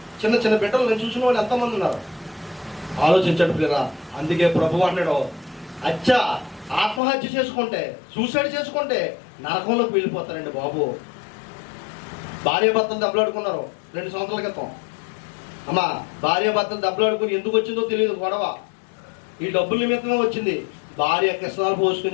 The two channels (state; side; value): drops out; right; at 7.0 s